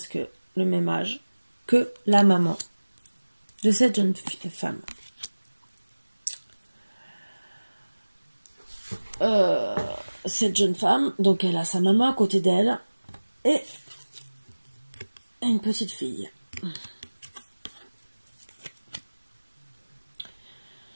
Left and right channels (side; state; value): both; inverted; correlation -1.00